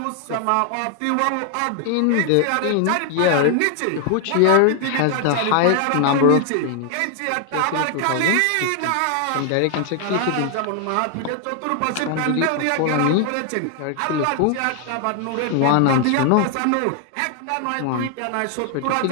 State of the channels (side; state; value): both; different; correlation 0.00